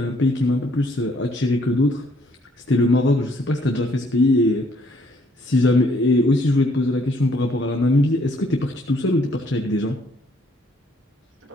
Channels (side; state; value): both; normal; correlation 0.65